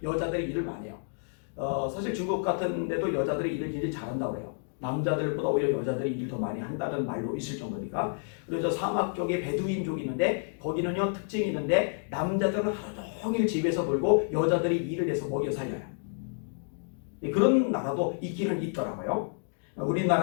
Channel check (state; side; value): silent; right; digital silence